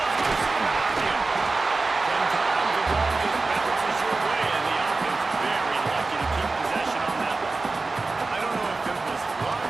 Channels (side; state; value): left; quieter; 3.6 dB